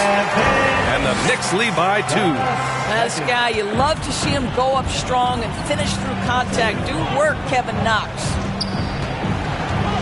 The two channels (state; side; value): identical; both; correlation 1.00